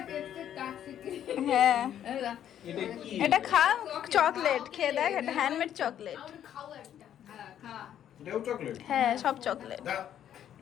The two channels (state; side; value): quieter; right; 10.3 dB